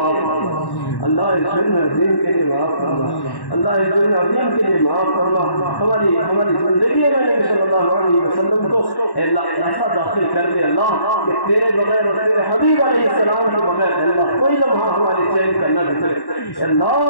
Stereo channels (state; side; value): late; right; 1.1 ms